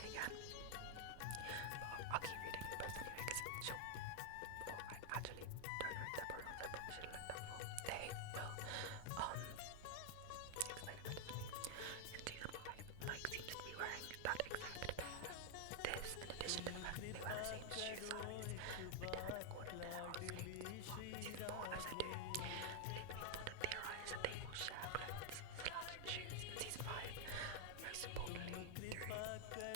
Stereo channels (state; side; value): different; both; correlation 0.00